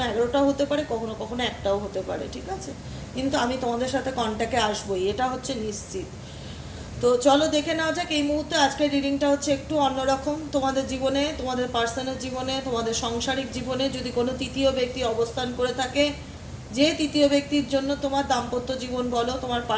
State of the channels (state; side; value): identical; both; correlation 1.00